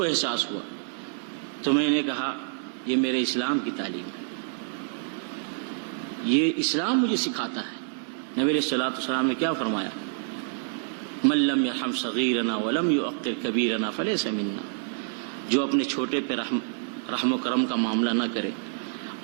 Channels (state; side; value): silent; left; digital silence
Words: احساس ہوا۔ تو میں نے کہا یہ میرے اسلام کی تعلیم ہے، یہ اسلام مجھے سکھاتا ہے۔ نبی علیہ الصلوۃ والسلام نے کیا فرمایا؟ من لم يرحم صغیرنا ولم يوقر کبیرنا فلیس منا، جو اپنے چھوٹے پہ رحم و کرم کا معاملہ نہ کرے